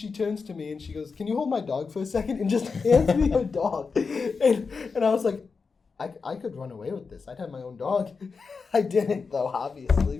turns to me and she goes, "Can you hold my dog for a second?" And just hands me her dog. And I was like, I could run away with this. I'd have my own dog. I didn't though, obviously.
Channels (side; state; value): right; quieter; 4.9 dB